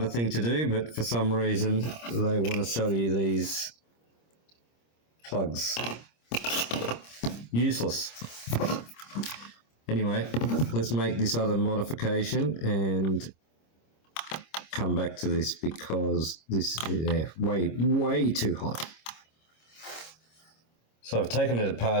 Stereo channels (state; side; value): late; right; 26 ms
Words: thing to do, but for some reason they want to sell you these plugs. Useless. Anyway, let's make this other modification and come back to this because this is way too hot. So I've taken it